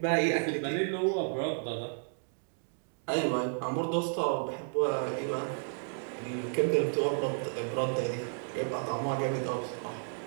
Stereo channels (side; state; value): left; silent; 56 dB below the other